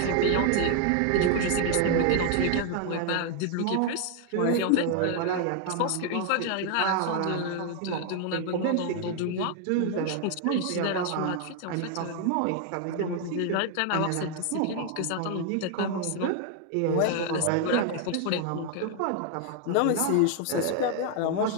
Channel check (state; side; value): different; both; correlation 0.00